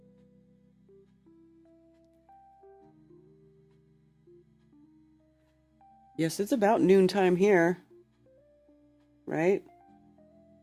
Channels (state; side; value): identical; both; correlation 1.00